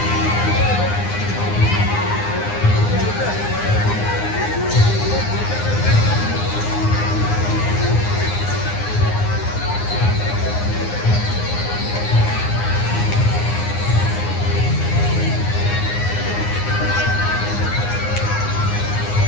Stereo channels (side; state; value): right; late; 9.7 ms